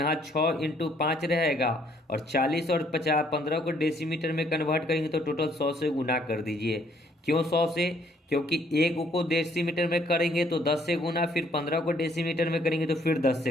6 इंटू 5 रहेगा और 40 और 15 को डेसीमीटर में कन्वर्ट करेंगे तो टोटल 100 से गुना कर दीजिए। क्यों 100 से, क्योंकि एक को डेसीमीटर में करेंगे तो 10 से गुना, फिर 15 को डेसीमीटर में करेंगे तो फिर 10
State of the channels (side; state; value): both; normal; correlation 0.65